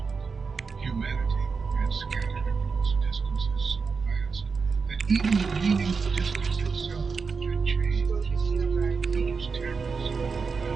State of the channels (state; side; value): quieter; left; 5.1 dB